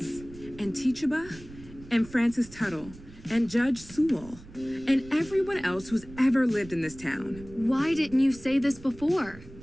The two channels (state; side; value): noise; right; rumble, 18 dB below the sound